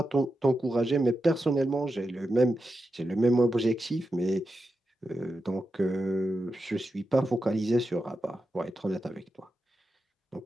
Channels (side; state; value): both; normal; correlation 0.89